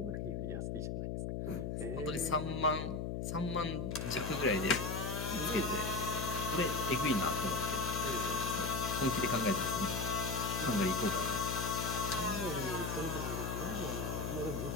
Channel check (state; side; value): noise; left; hum, 2 dB below the sound